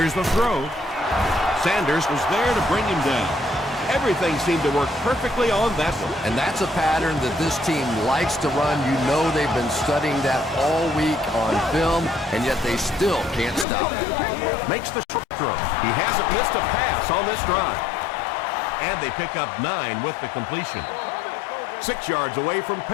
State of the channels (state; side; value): drops out; right; at 13.7 s